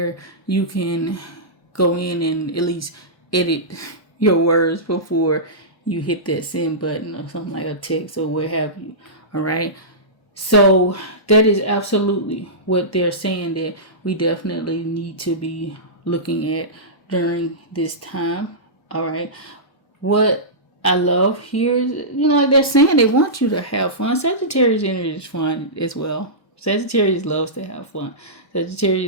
you can go in and at least edit your words before you hit that send button or something like a text or what have you. All right. So that is absolutely what they're saying that we definitely need to be looking at during this time. All right. What I love here is, you know, like they're saying they want you to have fun. Sagittarius energy is fun as well. Sagittarius loves to have fun.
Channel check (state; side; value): late; right; 1.1 ms